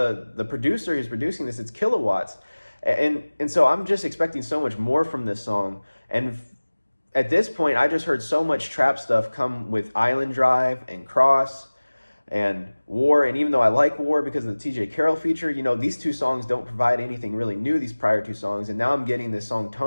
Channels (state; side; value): inverted; both; correlation -1.00